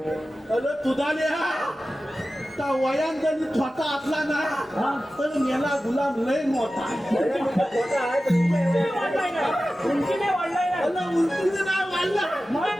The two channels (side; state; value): both; normal; correlation 0.94